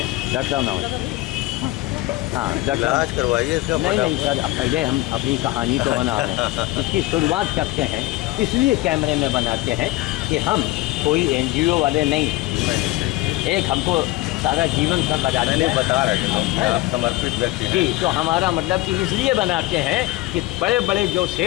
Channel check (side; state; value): right; quieter; 18.3 dB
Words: डॉक्टर साहब नमस्ते। हाँ डॉक्टर साहब इलाज करवाइए इसका। नहीं सर, पहले हम अपनी कहानी तो बना रहे हैं। इसकी शुरुआत करते हैं, इसलिए कैमरे में बनाते हैं कि हम कोई NGO वाले नहीं। एक हमको सारा जीवन सर लगा मैंने बता रहे थे आप समर्पित व्यक्ति हैं। जी, तो हमारा मतलब कि इसलिए बनाते हैं कि बड़े बड़े जो